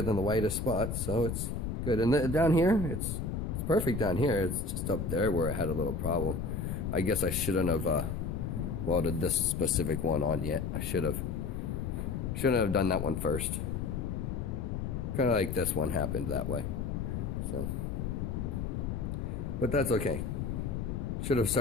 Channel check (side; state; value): left; noise; rumble, 2 dB below the sound